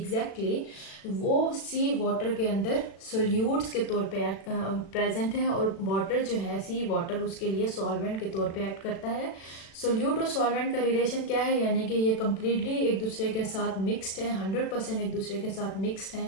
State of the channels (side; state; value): right; late; 36 ms